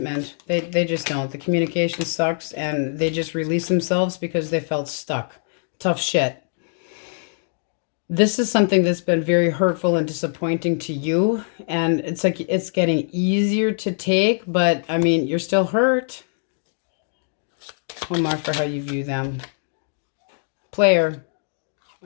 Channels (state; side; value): silent; right; digital silence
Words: They just don't. The communication sucks and they just release themselves because they felt stuck. Tough shit. This is something that's been very hurtful and disappointing to you. And it's like it's getting easier to take, but I mean, you're still hurt. One more for how you view them. Player.